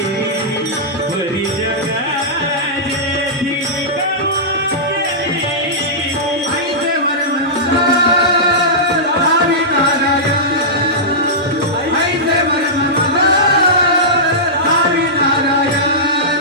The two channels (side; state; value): both; normal; correlation -0.14